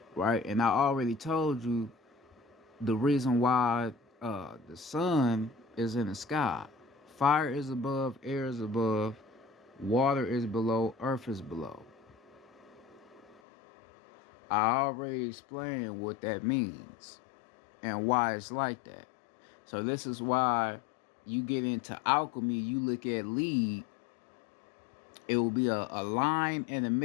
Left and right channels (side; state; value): right; drops out; at 13.4 s